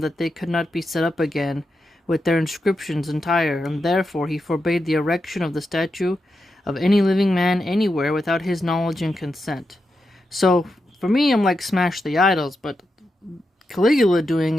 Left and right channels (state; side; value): normal; both; correlation 0.87